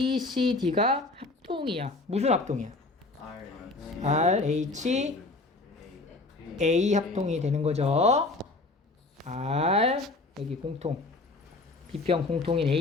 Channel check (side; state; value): right; quieter; 3.3 dB